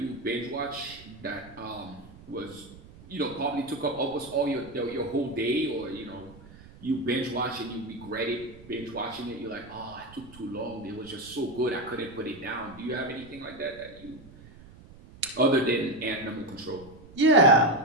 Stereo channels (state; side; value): noise; right; rumble, 20 dB below the sound